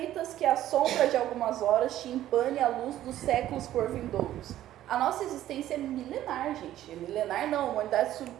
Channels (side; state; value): left; quieter; 13.1 dB